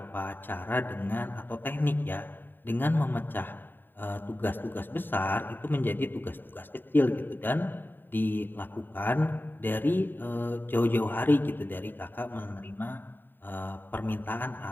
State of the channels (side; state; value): right; late; 0.093 ms